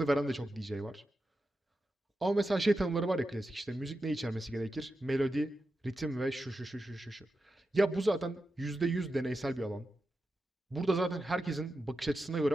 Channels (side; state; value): both; normal; correlation 0.90